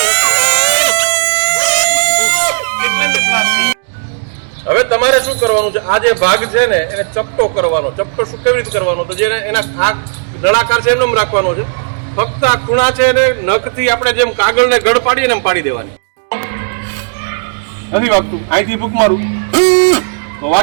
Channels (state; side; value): silent; left; digital silence